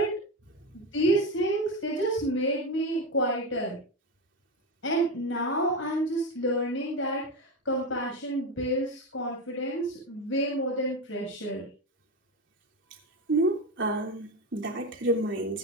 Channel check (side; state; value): both; normal; correlation 0.16